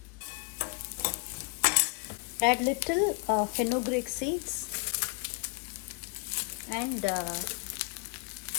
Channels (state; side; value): quieter; right; 30.9 dB